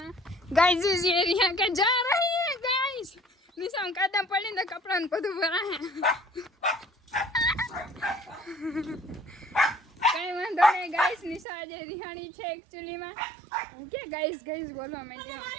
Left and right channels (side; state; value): left; drops out; at 11.5 s